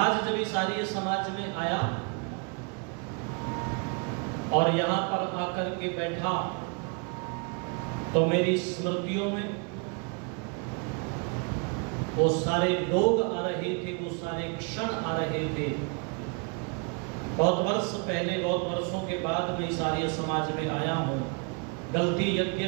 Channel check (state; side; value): quieter; left; 34.6 dB